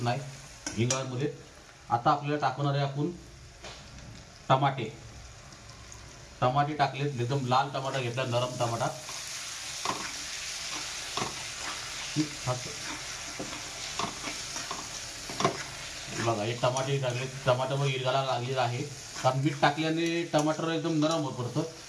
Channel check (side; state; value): both; identical; correlation 1.00